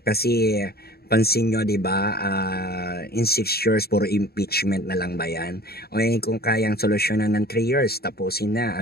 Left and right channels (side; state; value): right; late; 0.46 ms